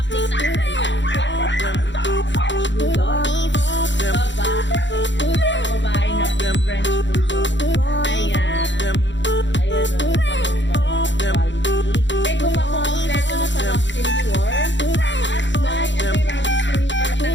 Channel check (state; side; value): late; right; 0.53 ms